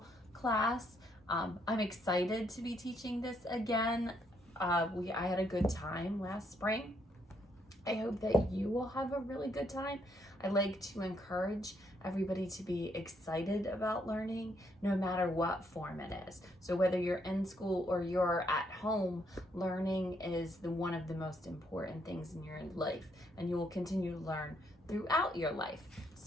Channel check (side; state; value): both; normal; correlation 0.73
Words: class. I'm excited to be teaching this again. I had a good time last spring. I hope that you will have a really good time. I like to encourage everybody to be excited about learning, no matter what form it is. So whether you're in school or you're at home, learning is one of the most important things in your life, and you will continue to learn throughout your life.